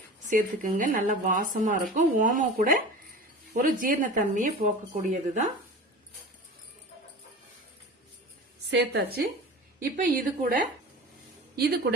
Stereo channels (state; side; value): normal; both; correlation 0.35